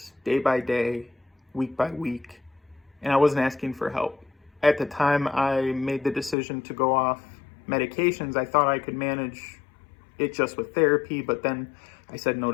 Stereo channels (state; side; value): drops out; right; at 6.4 s